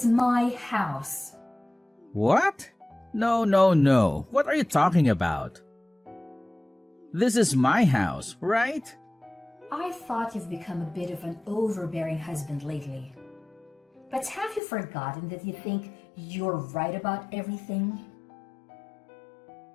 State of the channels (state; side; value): drops out; right; at 14.6 s